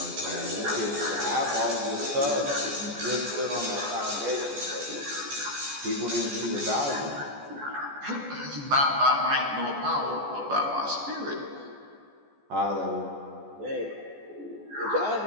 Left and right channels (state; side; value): late; left; 14 ms